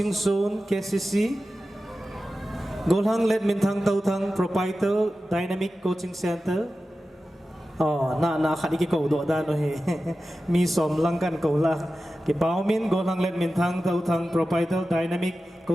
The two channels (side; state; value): both; normal; correlation 0.94